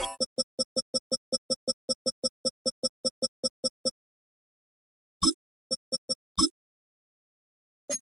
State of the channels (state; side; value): normal; both; correlation 0.84